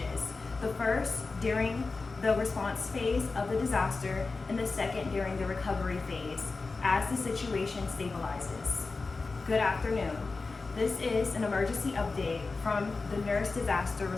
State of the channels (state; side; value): quieter; right; 3.9 dB